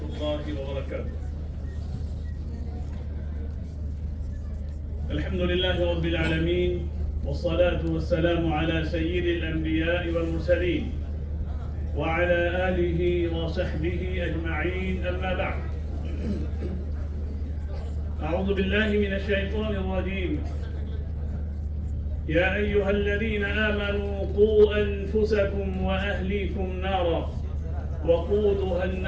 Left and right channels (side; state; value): both; identical; correlation 1.00